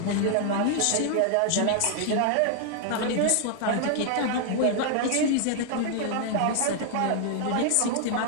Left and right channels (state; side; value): different; both; correlation 0.00